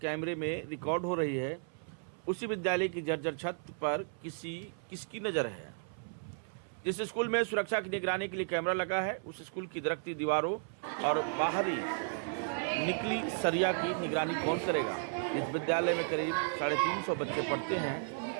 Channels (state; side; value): silent; left; 55 dB below the other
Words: में रिकॉर्ड हो रही है, उसी विद्यालय की जर्जर छत पर किसकी नज़र है। जिस स्कूल में सुरक्षा की निगरानी के लिए कैमरा लगा है, उस स्कूल की दरकती दीवारों और बाहरी निकली सरिया की निगरानी कौन करेगा। इस विद्यालय में करीब 350 बच्चे पढ़ते